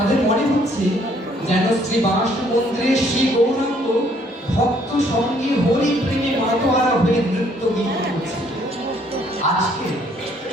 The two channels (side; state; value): both; normal; correlation 0.64